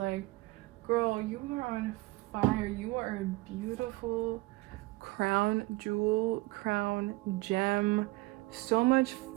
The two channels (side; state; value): left; quieter; 21.6 dB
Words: girl, you are on fire. You are a beautiful crown jewel, crown gem. So much